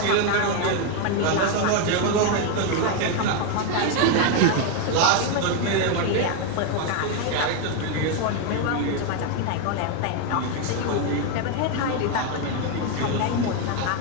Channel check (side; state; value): both; different; correlation 0.01